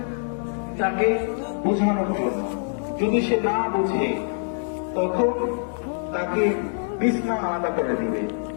তাকে বোঝানোর জন্য, যদি সে না বুঝে তখন তাকে বিছনা আলাদা করে দিবে।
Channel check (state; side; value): silent; right; digital silence